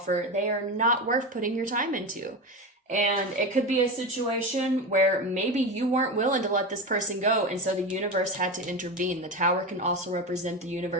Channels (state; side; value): normal; both; correlation 0.21